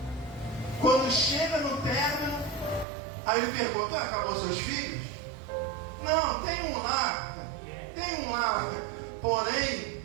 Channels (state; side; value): drops out; left; at 2.9 s